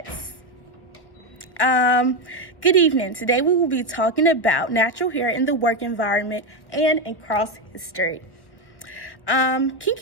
Good evening. Today we will be talking about natural hair in the work environment and in cross history.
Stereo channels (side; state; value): right; late; 1.0 ms